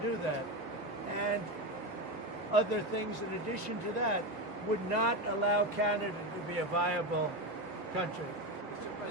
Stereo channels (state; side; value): normal; both; correlation 0.16